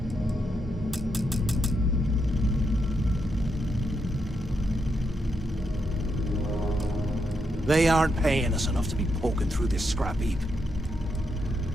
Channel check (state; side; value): normal; both; correlation 0.81